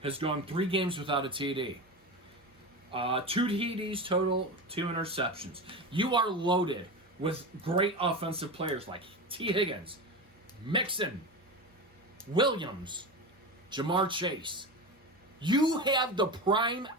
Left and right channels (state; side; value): normal; both; correlation 0.24